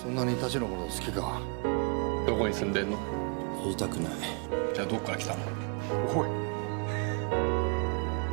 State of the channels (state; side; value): quieter; left; 35.1 dB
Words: んなに田代のこと好きか。どこに住んでんの？言いたくない。じゃあどっから来たの？おい。